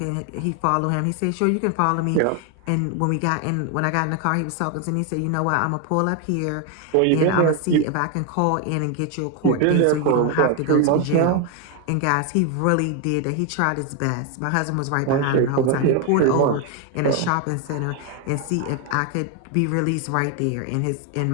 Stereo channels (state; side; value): different; both; correlation 0.01